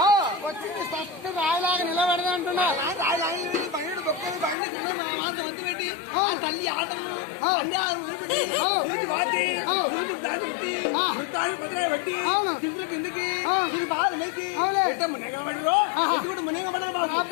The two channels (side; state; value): right; drops out; at 4.5 s